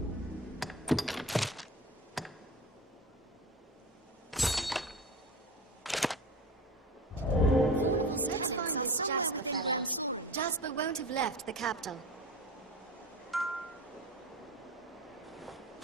Let's find this Jasper fellow. Jasper won't have left the capital.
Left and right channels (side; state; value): both; normal; correlation 0.31